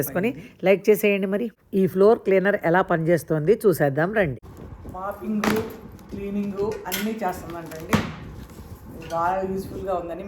లైక్ చేసేయండి. మరి ఈ ఫ్లోర్ క్లీనర్ ఎలా పనిచేస్తుంది చూసేద్దాం రండి. మాపింగ్, క్లీనింగు అన్నీ చేస్తుందంటండి. బాగా యూస్ఫుల్గా ఉందని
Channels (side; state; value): both; identical; correlation 1.00